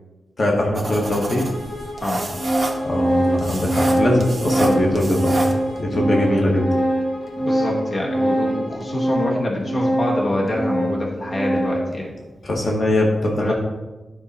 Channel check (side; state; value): both; normal; correlation 0.91